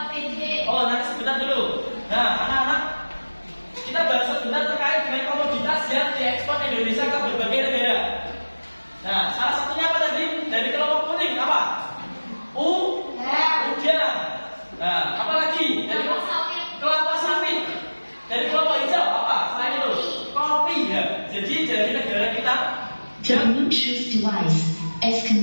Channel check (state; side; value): inverted; both; correlation -1.00